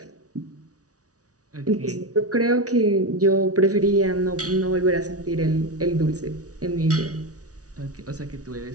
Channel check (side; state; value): left; late; 0.67 ms